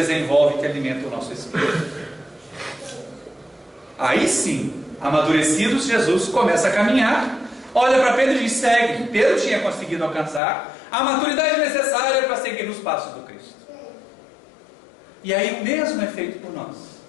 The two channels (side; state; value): right; drops out; at 10.4 s